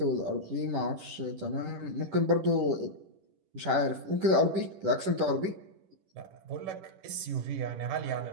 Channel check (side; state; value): left; late; 10 ms